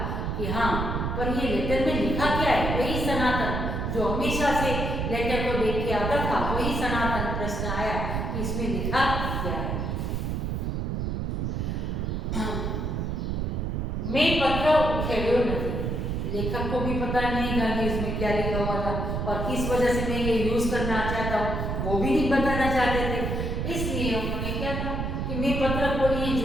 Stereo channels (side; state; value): right; noise; rumble, 1 dB below the sound